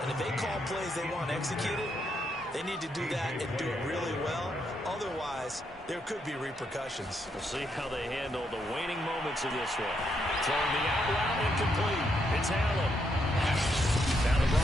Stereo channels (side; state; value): both; normal; correlation 0.78